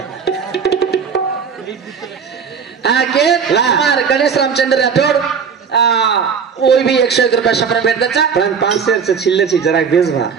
हाँ के मार गणेश रामचंद्र राठौड़ वो भी 101 रुपया शपर भेट दचा पण 500 से छिल्ले छी जरा बेस भा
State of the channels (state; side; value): quieter; left; 6.4 dB